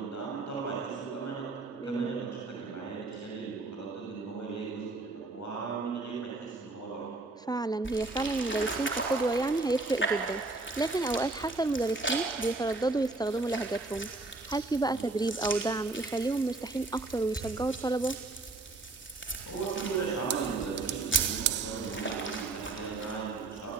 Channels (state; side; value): quieter; left; 3.3 dB